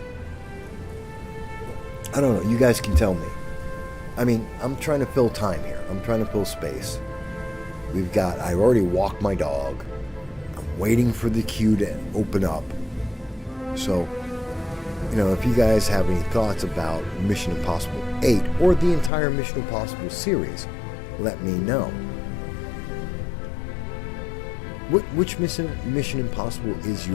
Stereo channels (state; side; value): drops out; right; at 19.1 s